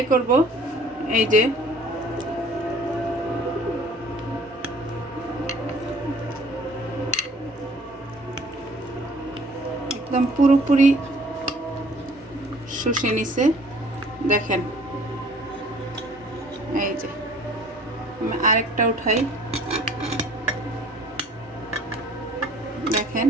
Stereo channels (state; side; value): normal; both; correlation 0.53